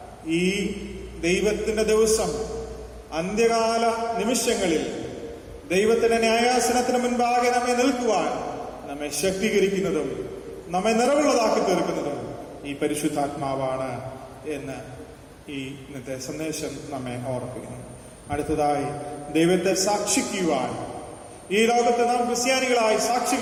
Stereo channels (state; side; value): identical; both; correlation 1.00